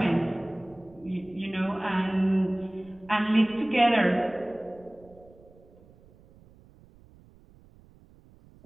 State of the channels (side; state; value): right; noise; rumble, 26 dB below the sound